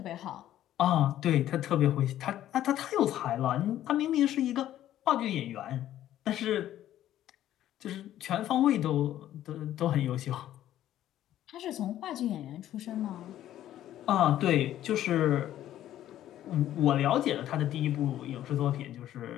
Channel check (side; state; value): right; quieter; 12.5 dB